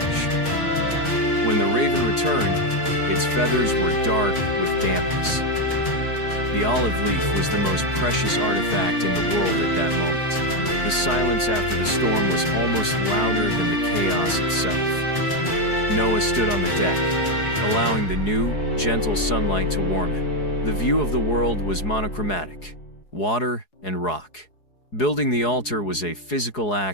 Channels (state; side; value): late; right; 4.8 ms